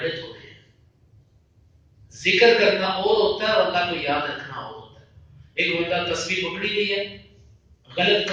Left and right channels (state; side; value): identical; both; correlation 1.00